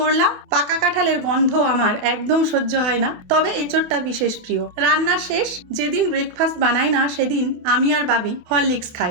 পাকা কাঁঠালের গন্ধ আমার একদম সহ্য হয় না, তবে এঁচড়টা বিশেষ প্রিয়। রান্না শেষ। যেদিন ব্রেকফাস্ট বানাই না সেদিন আমি আর বাবি হরলিক্স খাই,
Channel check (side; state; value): left; late; 28 ms